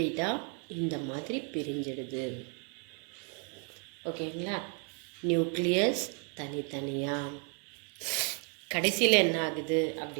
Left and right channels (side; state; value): left; quieter; 38.8 dB